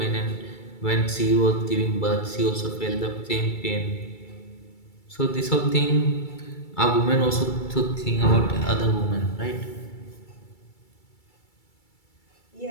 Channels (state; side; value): late; right; 2.3 ms